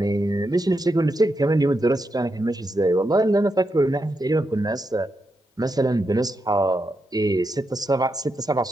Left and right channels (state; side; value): normal; both; correlation 0.85